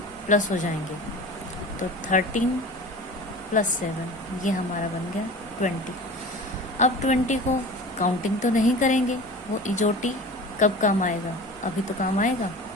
प्लस हो जाएंगे। तो 13 + 7 ये हमारा बन गया 20। अब 20 को काउंटिंग तो नहीं करेंगे, वो इजोटी कब काम आएगा, अभी तो काम आएगा।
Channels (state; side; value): normal; both; correlation 0.37